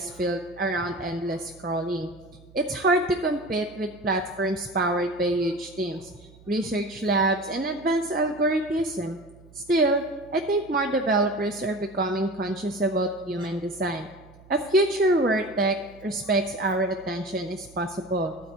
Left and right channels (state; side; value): noise; right; hum, 24 dB below the sound